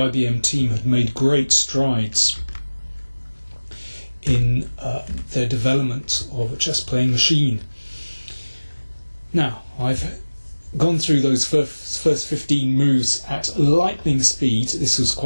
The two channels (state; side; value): inverted; both; correlation -1.00